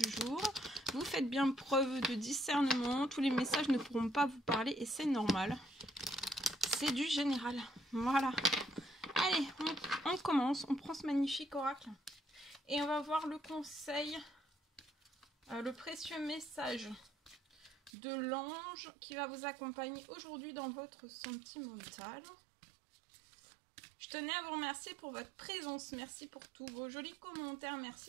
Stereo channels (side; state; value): left; drops out; at 17.9 s